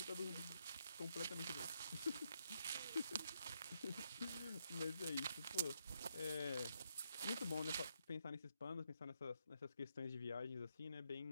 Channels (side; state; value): both; inverted; correlation -0.78